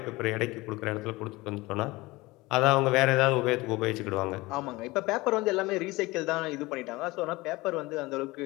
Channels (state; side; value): quieter; right; 21.4 dB